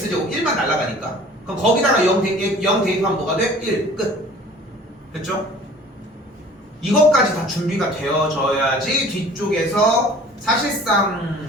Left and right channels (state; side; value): normal; both; correlation 0.48